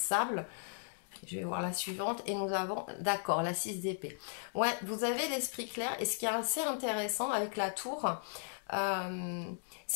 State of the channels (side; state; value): right; silent; digital silence